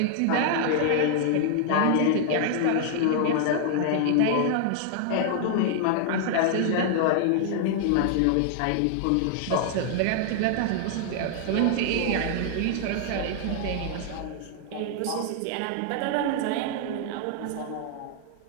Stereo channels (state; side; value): different; both; correlation 0.00